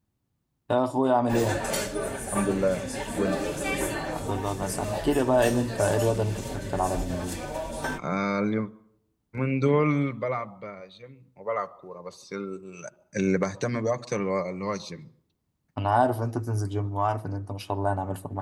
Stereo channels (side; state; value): both; identical; correlation 1.00